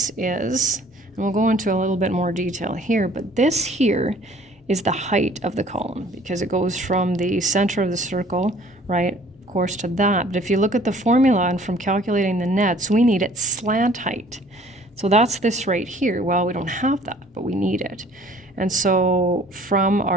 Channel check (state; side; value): normal; both; correlation 0.54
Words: is, and we'll go into a little bit more detail here, but this here is the height of the column because it goes from the center of the circle, right, of course, to that. But if you look at the formula and from calculating the nets, we need its slant height. So that's this right here. Well, we don't have that, but we need it. And so from